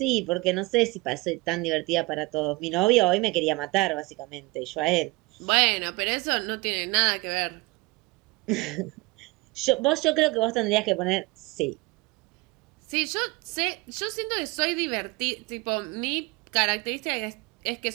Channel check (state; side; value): quieter; left; 24.0 dB